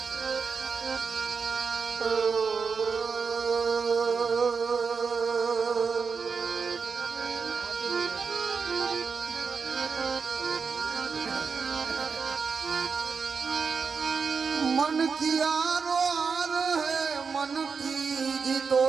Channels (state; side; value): quieter; left; 5.4 dB